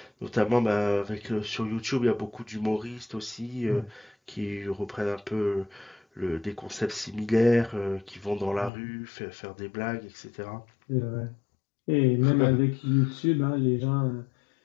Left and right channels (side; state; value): right; drops out; at 8.7 s